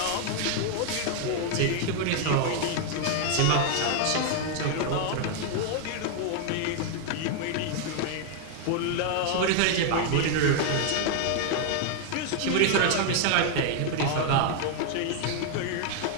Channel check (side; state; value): both; different; correlation 0.00